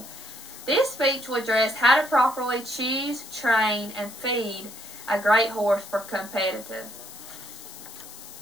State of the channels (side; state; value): left; noise; hiss, 15 dB below the sound